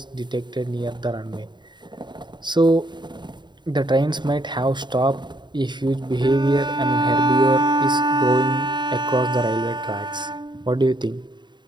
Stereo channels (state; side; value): late; left; 0.22 ms